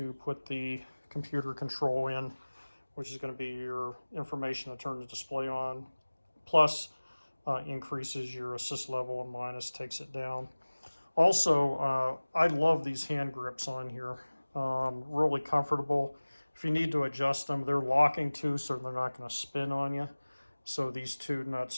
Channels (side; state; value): both; inverted; correlation -1.00